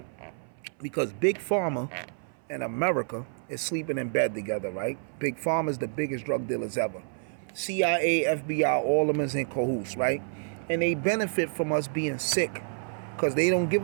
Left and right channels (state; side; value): silent; left; 57 dB below the other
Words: Because Big Pharma and America is sleeping in bed together, right? Big Pharma is the biggest drug dealers ever. CIA, FBI, all of them is in cahoots, right? And they benefit from us being sick because they don't give